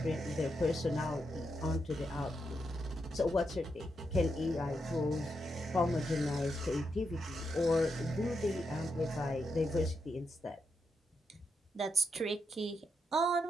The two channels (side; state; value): both; normal; correlation 0.83